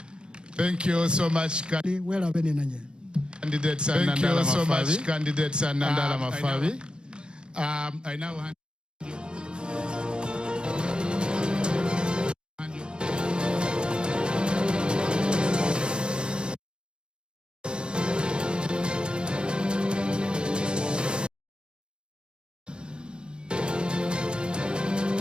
Thank you so much, candidates. Thank you so much, candidates and Nandala Mafabi. I now hand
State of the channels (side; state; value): left; late; 0.051 ms